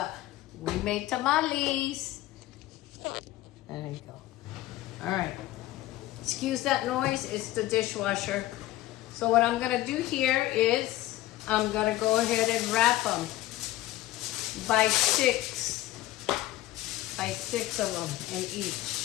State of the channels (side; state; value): right; quieter; 16.0 dB